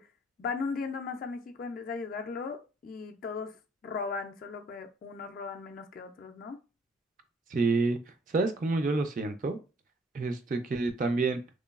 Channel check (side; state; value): both; normal; correlation 0.63